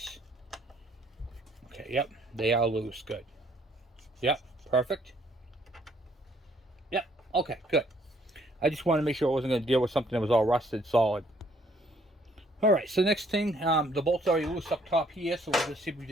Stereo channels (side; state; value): both; normal; correlation 0.64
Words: Okay, yep, they are loose. Good. Yep, perfect. Yep, okay, good. I just wanted to make sure I wasn't going to deal with something that was all rusted solid. All right, so next thing, the bolt's already loose up top here, so we'll just see if we